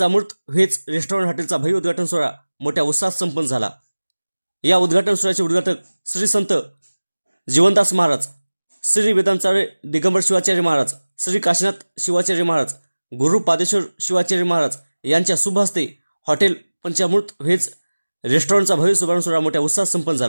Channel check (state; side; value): inverted; both; correlation -1.00